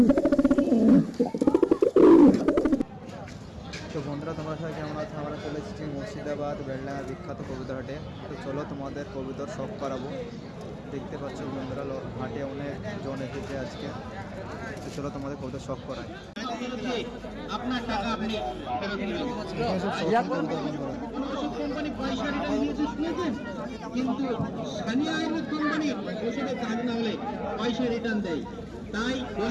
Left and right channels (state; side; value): identical; both; correlation 1.00